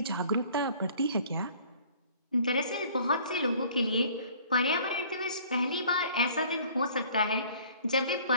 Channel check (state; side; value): inverted; both; correlation -0.53